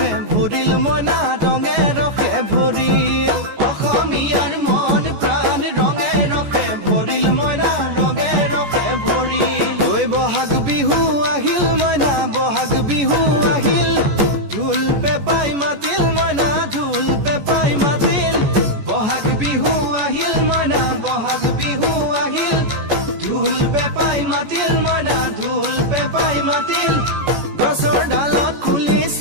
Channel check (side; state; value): left; late; 14 ms